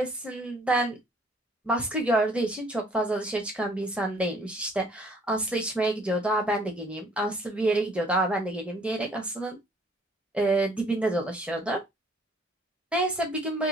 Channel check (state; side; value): normal; both; correlation 0.59